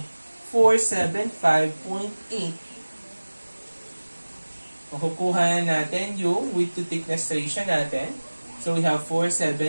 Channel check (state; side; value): inverted; both; correlation -1.00